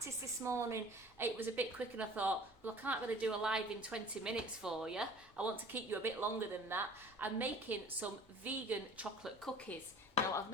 this morning it was a bit quick and I thought, well, I can't really do a live in 20 minutes for you. I want to keep you a bit longer than that. I'm making some vegan chocolate cookies. Now I've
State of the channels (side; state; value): both; normal; correlation 0.46